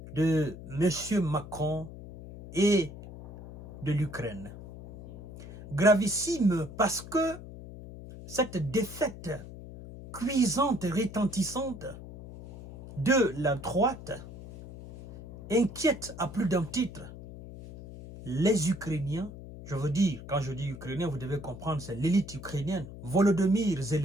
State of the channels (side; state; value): left; noise; hum, 14 dB below the sound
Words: de M. Macron et de l'Ukraine. Gravissime parce que cette défaite cuisante et retentissante de la droite inquiète à plus d'un titre les Ukrainiens. Je veux dire, quand je dis Ukrainien, vous devez comprendre, c'est l'élite ukrainienne, Volodymyr